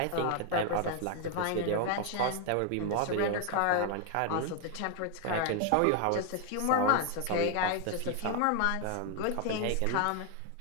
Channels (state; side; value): different; both; correlation 0.01